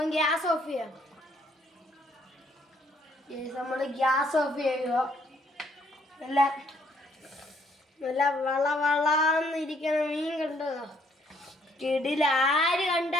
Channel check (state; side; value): normal; both; correlation 0.67